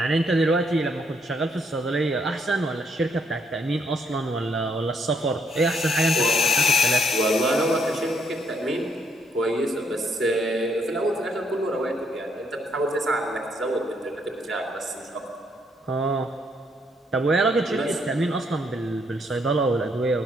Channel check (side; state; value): both; normal; correlation 0.72